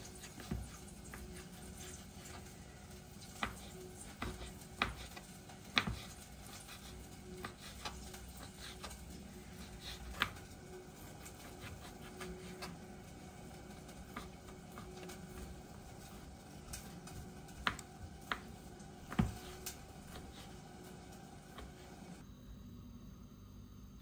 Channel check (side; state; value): both; identical; correlation 1.00